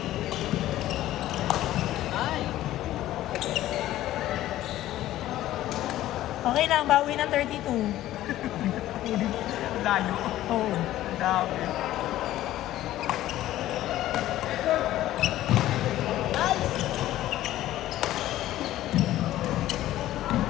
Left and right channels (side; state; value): right; quieter; 14.2 dB